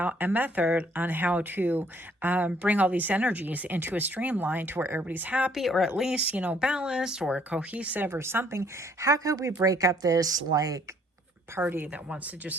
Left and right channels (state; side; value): normal; both; correlation 0.63